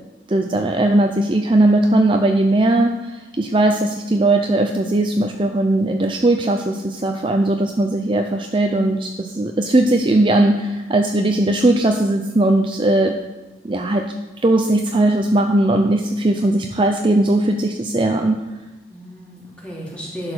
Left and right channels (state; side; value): normal; both; correlation 0.73